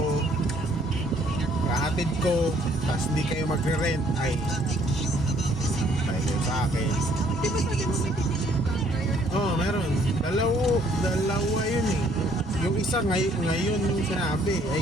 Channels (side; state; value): both; normal; correlation 0.63